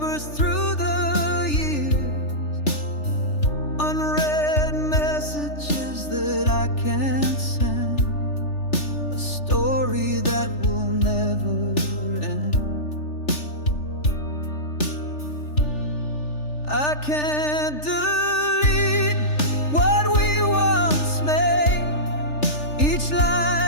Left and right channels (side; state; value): right; late; 3.4 ms